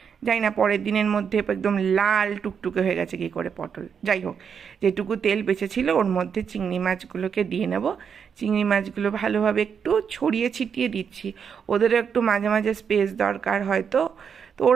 যাই না পরের দিনের মধ্যে একদম লাল টুকটুকে হয়ে গেছে কী করে পটল। যাই হোক, যেটুকু তেল বেঁচেছিল ওর মধ্যে চিংড়ি মাছগুলোকে দিয়ে নেব। চিংড়ি মাছগুলো ভালোভাবে একটু ছড়িয়ে ছিটিয়ে দিচ্ছি, ওদেরও একটু মাঝে মাঝে স্পেস দরকার হয়তো, তো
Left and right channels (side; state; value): left; quieter; 7.0 dB